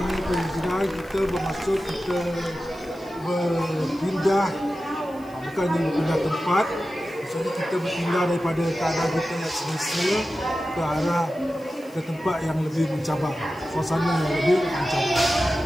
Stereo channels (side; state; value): left; noise; hiss, 27 dB below the sound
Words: ni, penghijrahan kita bermaksud kita berpindah, bukannya berpindah tempat. Maksudnya kita berpindah daripada keadaan kita yang semasa ke arah ke tempat yang lebih mencabar, suasana yang lebih mencabar.